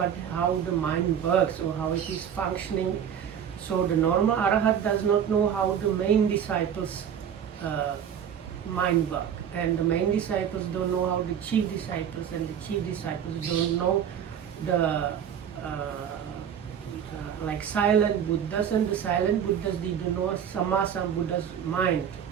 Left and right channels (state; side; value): quieter; left; 8.6 dB